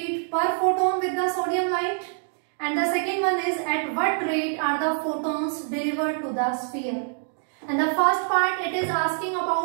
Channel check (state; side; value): silent; left; 61 dB below the other